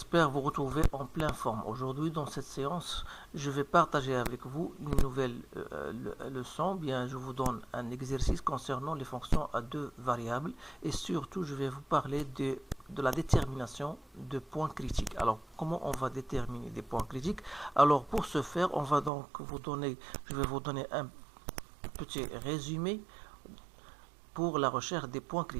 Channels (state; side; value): drops out; left; at 19.1 s